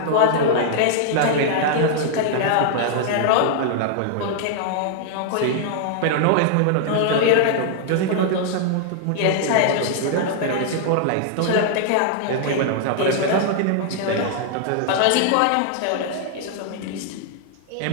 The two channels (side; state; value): both; different; correlation -0.01